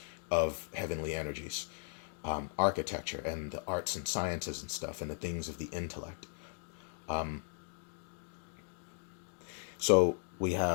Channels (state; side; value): silent; right; 53 dB below the other